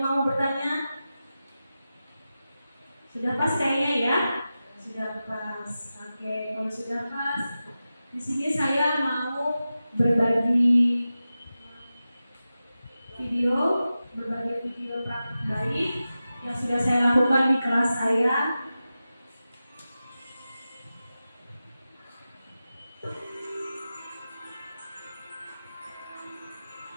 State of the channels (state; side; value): inverted; both; correlation -0.93